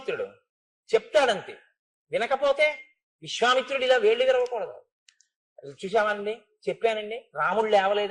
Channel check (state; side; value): identical; both; correlation 1.00